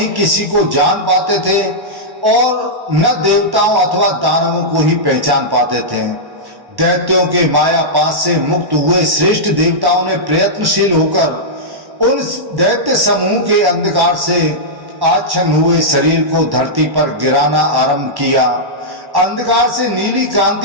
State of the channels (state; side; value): late; left; 1.1 ms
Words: किसी को जान पाते थे और न देवताओं अथवा दानवों को ही पहचान पाते थे। दैत्यों के माया पास से मुक्त हुए श्रेष्ठ देवताओं ने प्रयत्नशील होकर उन दैत्य समूह के अंधकार से आच्छन्न हुए शरीर को धरती पर गिराना आरंभ किया। अंधकार से नीली